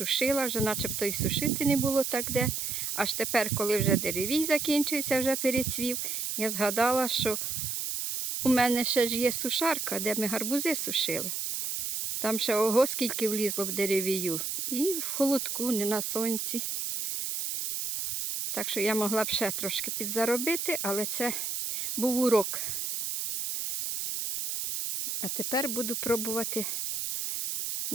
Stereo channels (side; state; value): right; noise; hiss, 2 dB below the sound